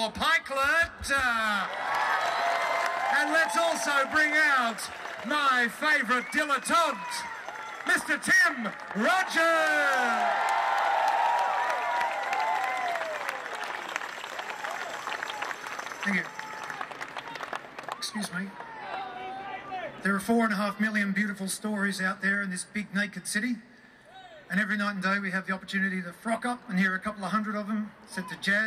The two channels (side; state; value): both; identical; correlation 1.00